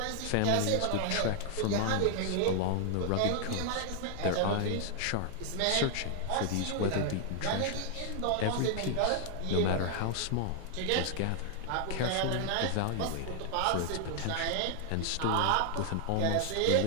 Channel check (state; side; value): different; both; correlation 0.00